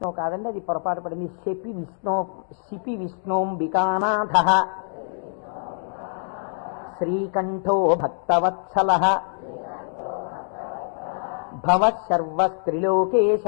కాదండి, అది పొరపాటు పడింది. శిపి విష్ణోంబికానాథః శ్రీకంఠో భక్తవత్సలః భవః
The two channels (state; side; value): silent; right; digital silence